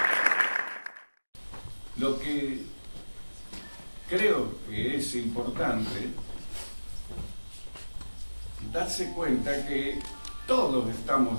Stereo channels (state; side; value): inverted; both; correlation -1.00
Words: Lo que creo que es importante darse cuenta que todos